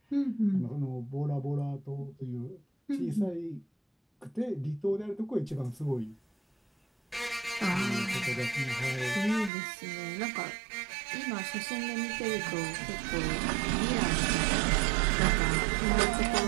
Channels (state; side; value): drops out; left; at 9.5 s